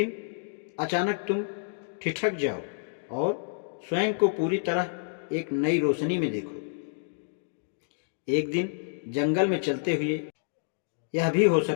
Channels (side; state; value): right; silent; digital silence